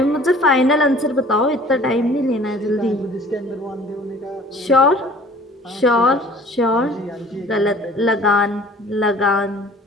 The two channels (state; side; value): normal; both; correlation 0.49